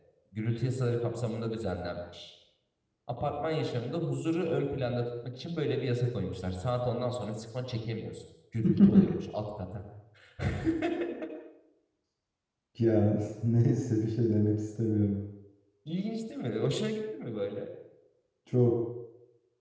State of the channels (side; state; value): both; identical; correlation 1.00